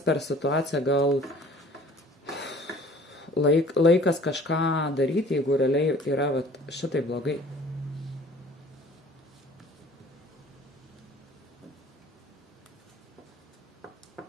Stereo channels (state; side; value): normal; both; correlation 0.50